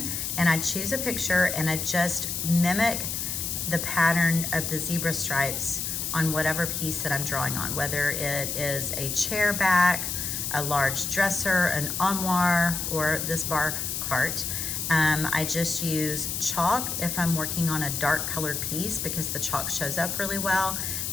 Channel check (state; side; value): noise; left; hiss, 3 dB below the sound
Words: and I choose a picture and I just mimic the pattern of the zebra stripes on whatever piece that I'm drawing on, whether it is a chair back, a large dresser, an armoire, or this bar cart. I just use chalk if I'm working on a dark colored piece because the chalk shows up really well.